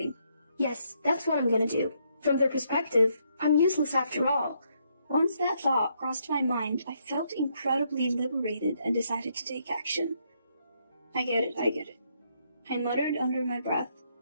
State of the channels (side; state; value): both; inverted; correlation -0.74